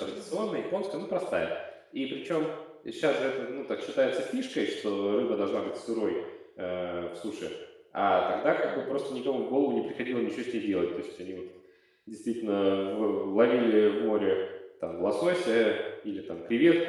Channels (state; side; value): identical; both; correlation 1.00